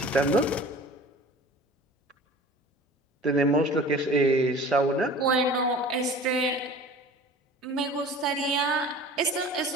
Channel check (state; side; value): normal; both; correlation 0.42